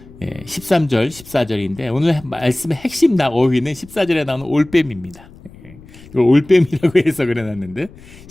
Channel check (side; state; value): left; noise; rumble, 21 dB below the sound